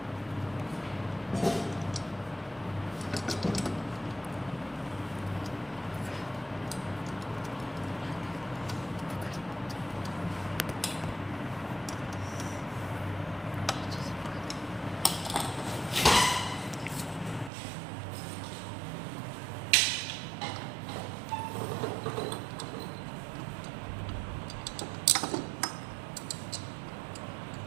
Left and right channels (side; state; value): left; drops out; at 17.5 s